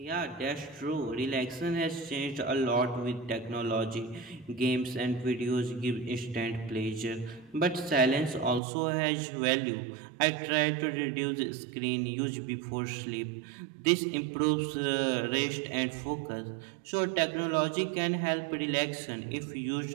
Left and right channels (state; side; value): drops out; left; at 8.6 s